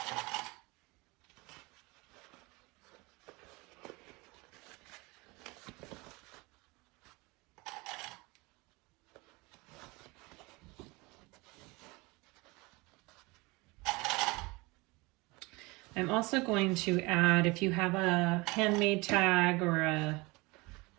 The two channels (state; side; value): quieter; left; 24.7 dB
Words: I'm also going to add, if you have a handmade tag or